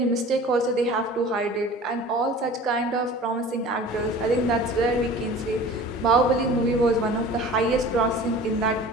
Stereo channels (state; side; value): normal; both; correlation 0.42